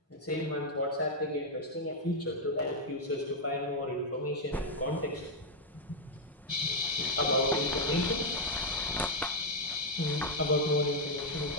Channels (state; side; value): normal; both; correlation 0.01